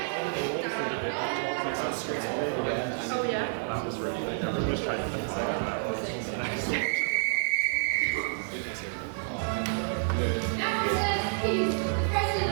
yeah? That was really good. Everyone was trying to think that was. He's the president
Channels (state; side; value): silent; left; digital silence